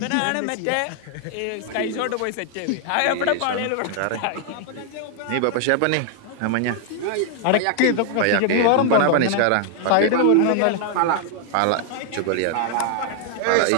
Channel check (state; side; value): different; both; correlation 0.00